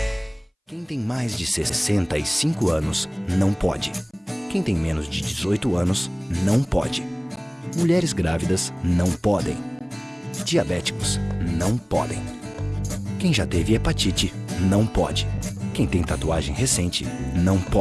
Quem tem mais de 65 anos não pode. Quem tem menos de 18 anos não pode. Mulheres grávidas não podem. Diabéticos não podem. Quem já teve hepatite não pode. Quem tem tatuagem recente não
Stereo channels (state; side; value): identical; both; correlation 1.00